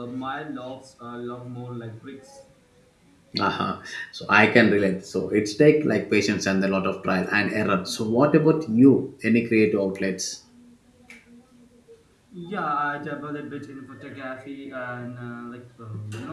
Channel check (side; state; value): both; identical; correlation 1.00